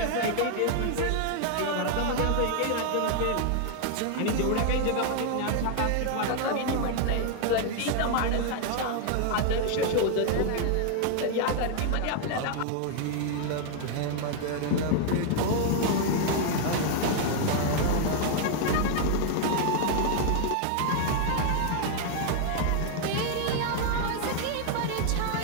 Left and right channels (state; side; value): different; both; correlation 0.00